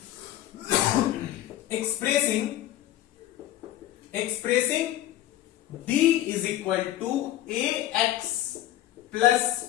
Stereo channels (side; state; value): right; quieter; 13.6 dB